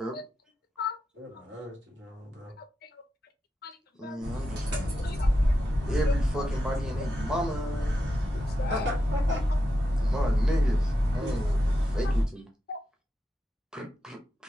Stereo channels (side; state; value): both; normal; correlation 0.89